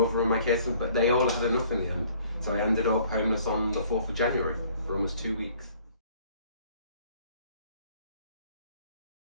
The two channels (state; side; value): inverted; both; correlation -0.58